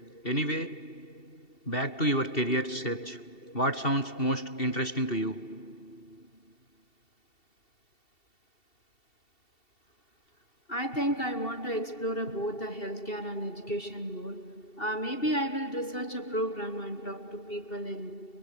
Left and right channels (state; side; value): late; right; 2.7 ms